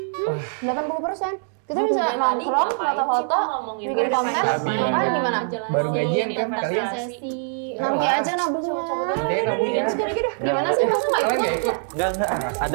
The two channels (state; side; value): silent; left; 63 dB below the other